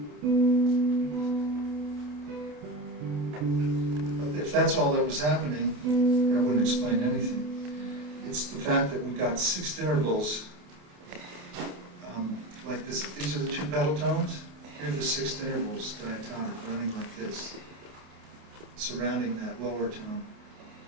If that's all that was happening, that wouldn't explain anything. It's the fact that we've got sixth intervals like this. These are the two pedal tones. Here are the sixth intervals diatonic running like this, surrounding that lower tone,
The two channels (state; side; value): late; left; 28 ms